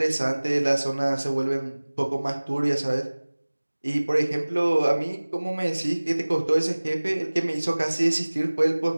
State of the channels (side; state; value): both; inverted; correlation -1.00